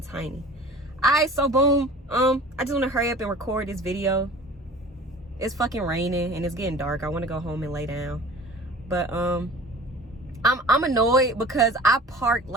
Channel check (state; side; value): normal; both; correlation 0.42